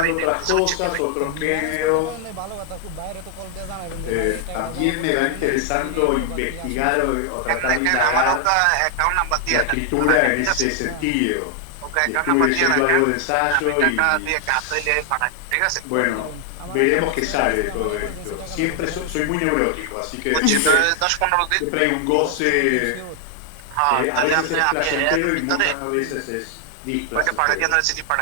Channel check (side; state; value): both; different; correlation 0.00